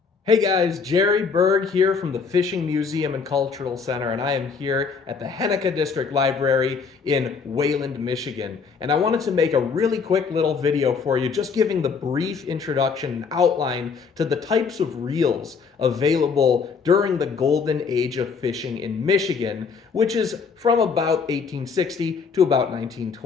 Hey guys, Jerry Berg here from the Fishing Museum and Cultural Center, and I am here at the Henika District Library in Wayland, Michigan. And I wanted to make a really quick little video for you, just giving the brief introduction and outline to the types of reels available during the golden age of fishing in Michigan, which is from about 1860 to about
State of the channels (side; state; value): right; quieter; 5.4 dB